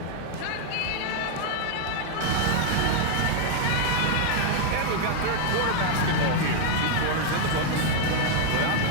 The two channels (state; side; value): different; both; correlation 0.00